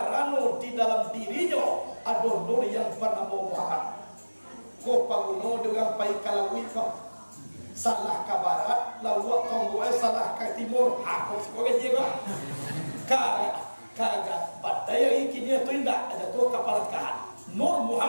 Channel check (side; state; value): both; inverted; correlation -1.00